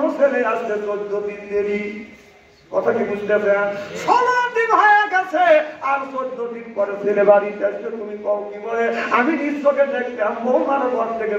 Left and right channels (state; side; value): identical; both; correlation 1.00